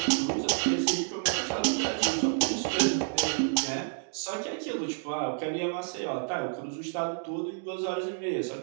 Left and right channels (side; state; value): left; silent; digital silence